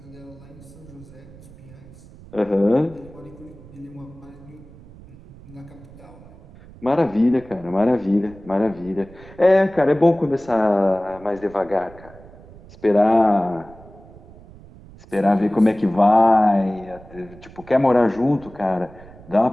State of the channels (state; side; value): noise; right; rumble, 21 dB below the sound